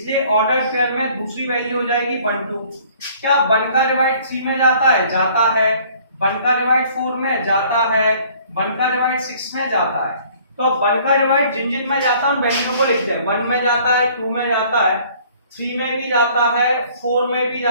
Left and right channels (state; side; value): inverted; both; correlation -0.56